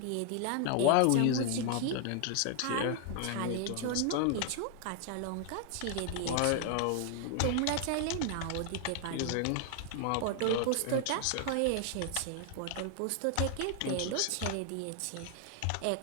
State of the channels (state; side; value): different; both; correlation 0.00